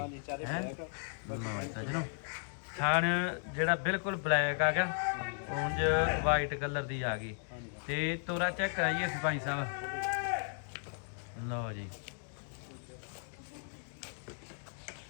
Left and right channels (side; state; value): right; silent; 54 dB below the other